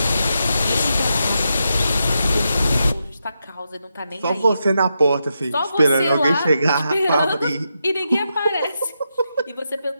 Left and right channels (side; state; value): both; inverted; correlation -0.85